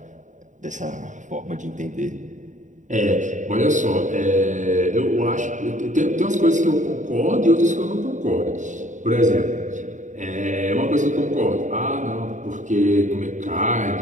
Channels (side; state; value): left; late; 0.36 ms